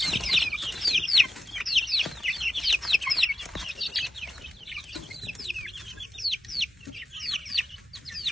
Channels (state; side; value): normal; both; correlation 0.95